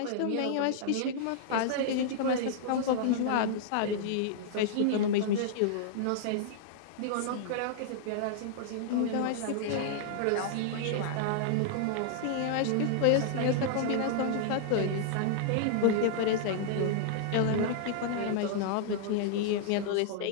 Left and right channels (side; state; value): both; different; correlation -0.01